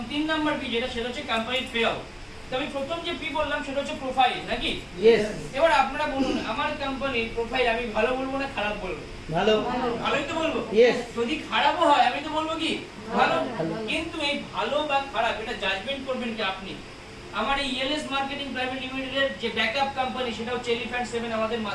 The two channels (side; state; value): both; identical; correlation 1.00